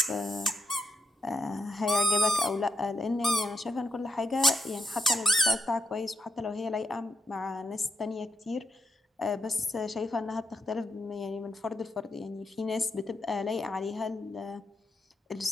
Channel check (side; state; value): both; normal; correlation 0.83